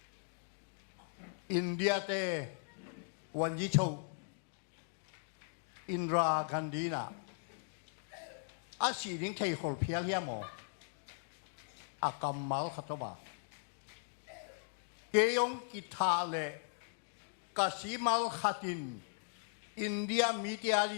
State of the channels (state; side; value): silent; right; digital silence